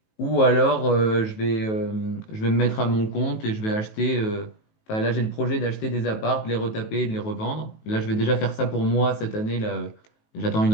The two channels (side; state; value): right; late; 19 ms